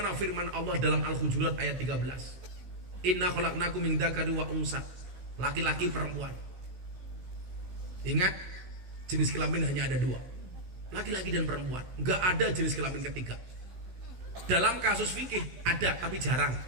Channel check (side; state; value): left; late; 16 ms